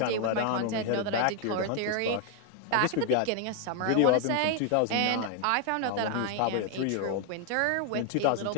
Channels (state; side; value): different; both; correlation 0.00